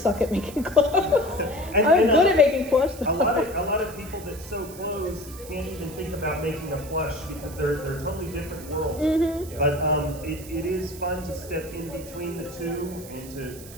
at making clothes. And- I'm and, good at making plush A though. lot of people that sew clothes can't even think about making a plush because they're totally different worlds. Mhm. But it is fun to step in between the two and to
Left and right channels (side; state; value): right; noise; hiss, 17 dB below the sound